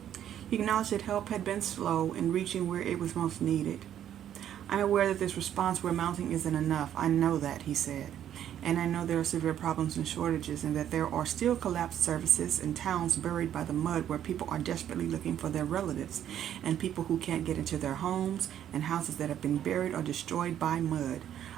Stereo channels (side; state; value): left; quieter; 10.5 dB